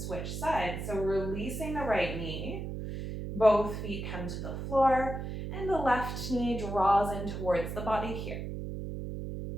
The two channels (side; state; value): right; noise; hum, 5 dB below the sound